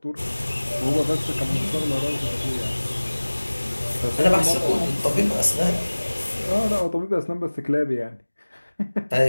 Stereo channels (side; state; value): both; inverted; correlation -1.00